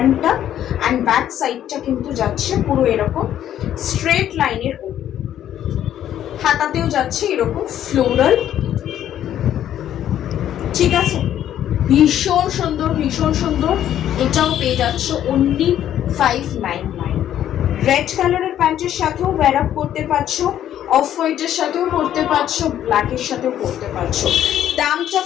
অ্যান্ড ব্যাক সাইডটা কিন্তু যাচ্ছে পুরো এরকম স্ট্রেট লাইনের ওপর। হাতাতেও যাচ্ছে এরকম ফ্লোরাল। ঠিক আছে, ভীষণ সুন্দর, ভীষণ সুন্দর। এটাও পেয়ে যাচ্ছ অনলি 599। রেড কালারের প্যান্টের সাথেও ওয়্যার আপ করতে পারছো, অফ হোয়াইটের সাথেও পরতে পারছো, ব্ল্যাকের সাথেও পরতে পারছো। দামটা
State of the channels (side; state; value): right; quieter; 11.1 dB